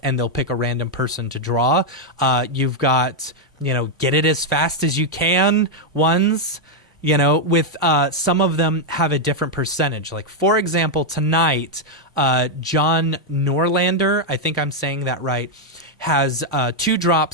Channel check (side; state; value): both; normal; correlation -0.01